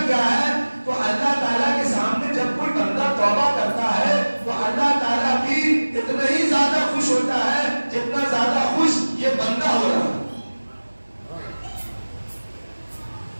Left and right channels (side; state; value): both; inverted; correlation -1.00